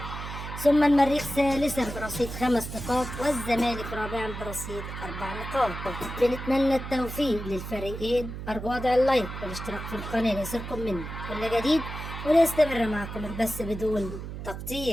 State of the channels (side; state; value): right; noise; hum, 8 dB below the sound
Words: ثم المريخ ثالثا برصيد 5 نقاط، والزمالك رابعا برصيد 4 نقاط. بنتمنى التوفيق للفريقين. أرجو وضع اللايك والاشتراك في القناة ليصلكم مني كل جديد، وليستمر معكم البث بدون